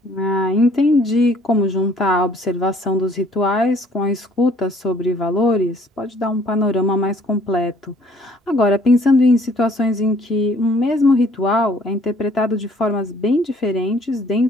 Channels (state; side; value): normal; both; correlation 0.59